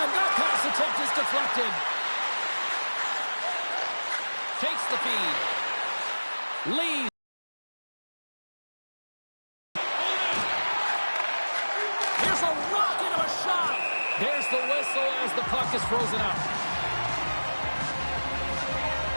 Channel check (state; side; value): inverted; both; correlation -1.00